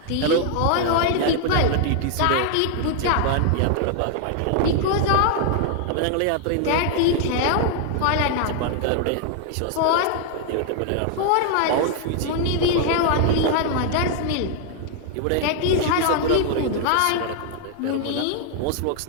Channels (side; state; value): both; different; correlation 0.00